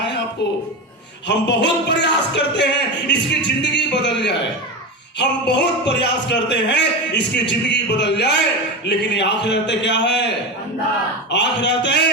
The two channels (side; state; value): both; normal; correlation 0.20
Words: आपको, हम बहुत प्रयास करते हैं इसकी जिंदगी बदल जाए, हम बहुत प्रयास करते हैं इसकी जिंदगी बदल जाए, लेकिन ये आखिरत क्या है? आखिरत